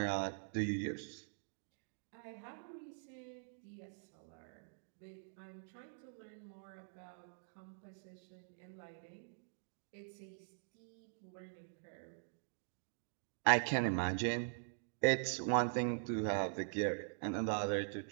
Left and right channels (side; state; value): left; silent; digital silence